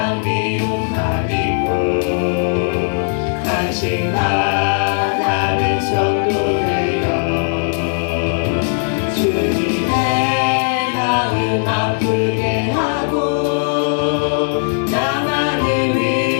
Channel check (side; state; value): right; silent; digital silence